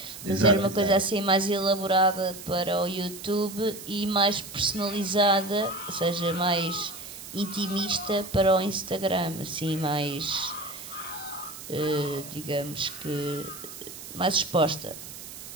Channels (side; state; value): right; noise; hiss, 13 dB below the sound